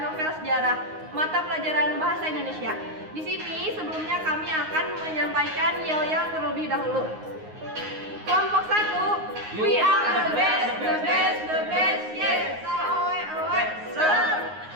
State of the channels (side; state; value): left; late; 9.6 ms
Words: novel sejarah mata pelajaran bahasa Indonesia. Di sini sebelumnya kami akan menyampaikan yel-yel terlebih dahulu. Kelompok 1, we are the best, yes.